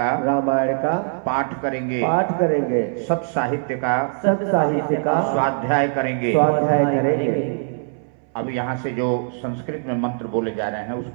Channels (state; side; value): silent; left; 61 dB below the other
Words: का पाठ करेंगे। सब साहित्य का स्वाध्याय करेंगे। अब यहाँ से जो संस्कृत में मंत्र बोले जा रहे हैं